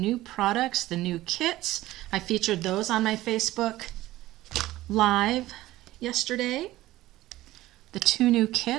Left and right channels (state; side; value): quieter; left; 16.4 dB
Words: products, the new kits. I featured those on my Facebook Live yesterday. The 2 new